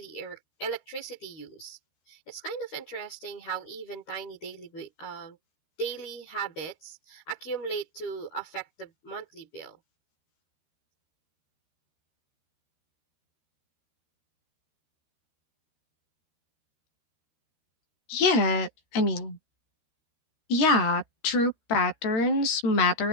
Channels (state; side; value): late; right; 13 ms